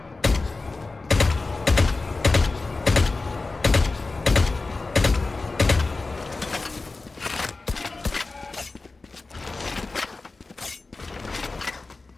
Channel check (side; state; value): right; quieter; 3.6 dB